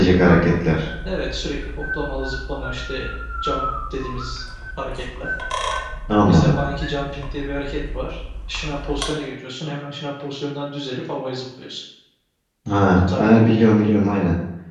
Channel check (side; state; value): both; identical; correlation 1.00